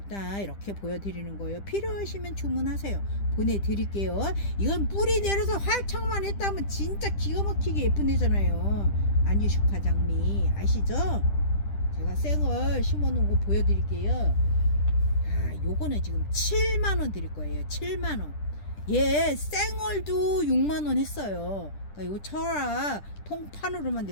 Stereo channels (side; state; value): right; late; 10 ms